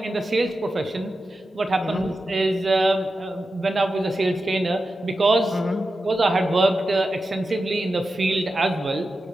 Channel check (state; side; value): normal; both; correlation 0.91